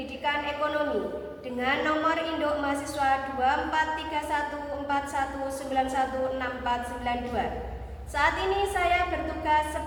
ekonomi dengan nomor induk mahasiswa 243141916492. Saat ini saya bertugas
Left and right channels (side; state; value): both; identical; correlation 1.00